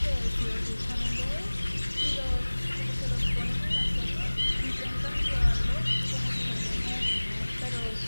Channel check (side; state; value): both; inverted; correlation -1.00